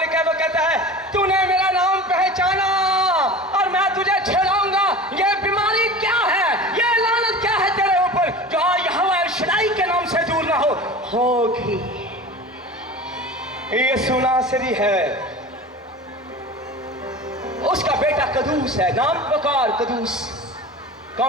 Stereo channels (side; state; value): both; normal; correlation 0.35